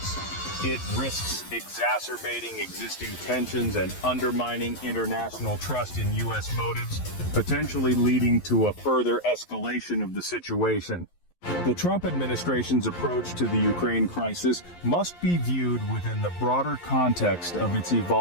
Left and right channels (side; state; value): right; late; 11 ms